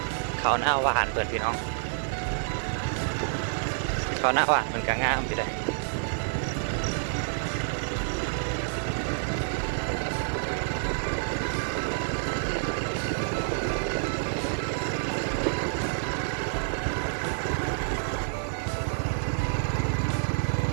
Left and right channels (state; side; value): silent; left; digital silence